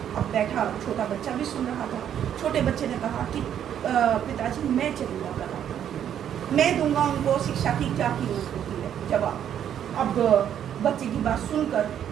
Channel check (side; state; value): left; quieter; 9.7 dB